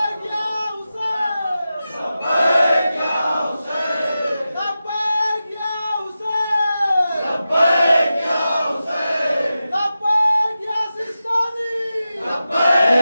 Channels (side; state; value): both; inverted; correlation -0.92